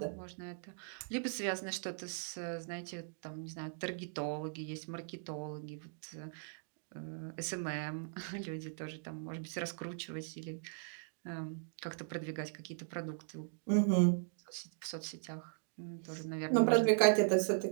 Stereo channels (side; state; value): left; silent; digital silence